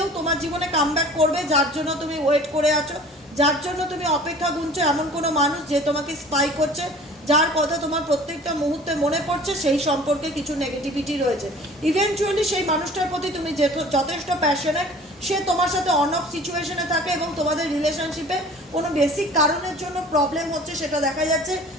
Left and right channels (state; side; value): normal; both; correlation 0.46